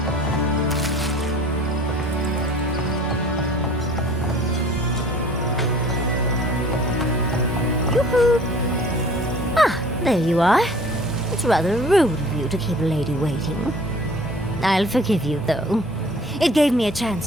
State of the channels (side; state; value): both; normal; correlation 0.49